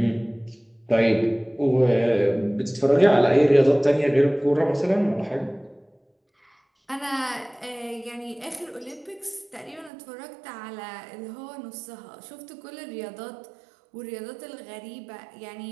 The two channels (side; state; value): left; drops out; at 9.9 s